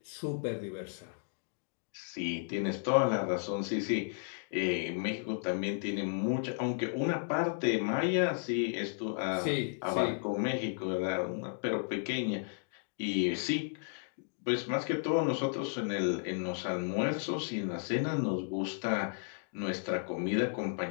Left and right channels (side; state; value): right; silent; digital silence